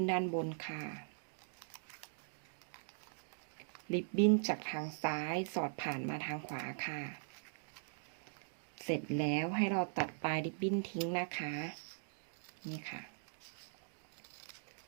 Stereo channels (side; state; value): left; silent; digital silence